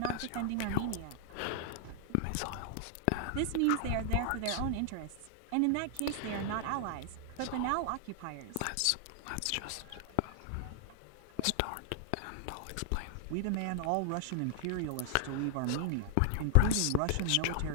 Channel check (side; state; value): both; different; correlation -0.01